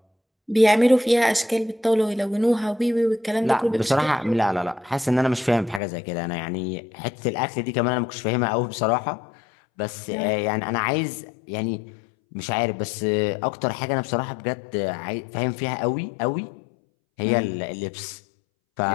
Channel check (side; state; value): right; drops out; at 5.8 s